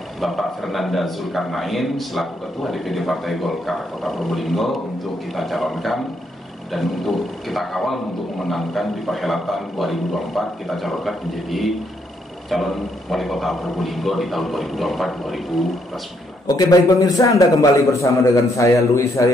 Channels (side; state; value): both; normal; correlation 0.74